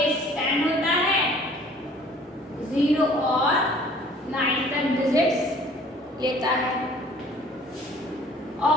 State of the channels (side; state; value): both; normal; correlation 0.53